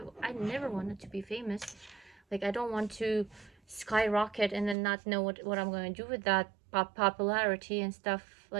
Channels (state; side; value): drops out; left; at 4.8 s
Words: never wanted to be famous. Like, I don't want to skyrocket and then not know what I'm going to do with that popularity and stuff.